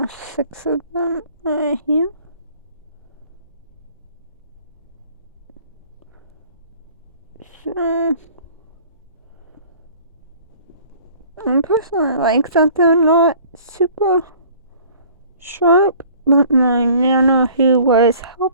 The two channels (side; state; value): both; inverted; correlation -0.52